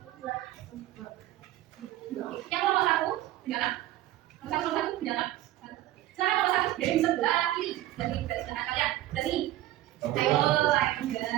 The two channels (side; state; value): left; quieter; 14.9 dB